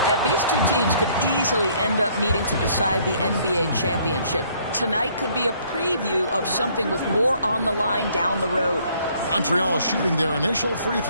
These 2 teams could easily end up meeting to decide the NBA championship. Tonight could be a preview of something with more on the line down the road. Montreal shooting their initial free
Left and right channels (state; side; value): inverted; both; correlation -0.63